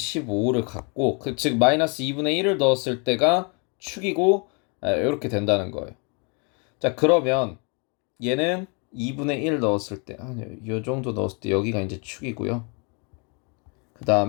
갖고 즉 마이너스 2분의 1을 넣었을 때가 축이고 이렇게 된다는 거예요. 자, 그러면 얘는 2분의 1 넣었을 때 요 정도 넣었을 때 여기가 이제 축이고요. 그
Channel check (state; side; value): quieter; right; 35.2 dB